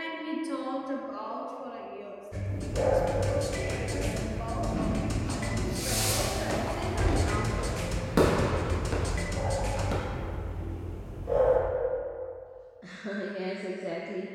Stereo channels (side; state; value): both; identical; correlation 1.00